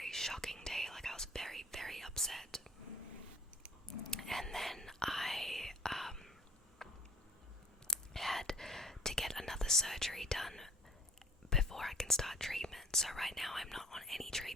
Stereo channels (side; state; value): both; normal; correlation 0.51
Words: shocking day. Like, I was very, very upset. And then I had to get another surgery done before I can start treatment. So right now I'm not on any